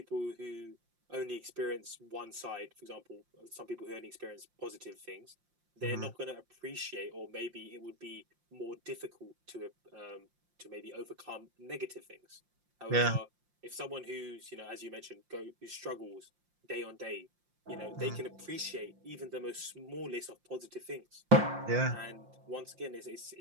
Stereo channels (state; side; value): late; left; 5.7 ms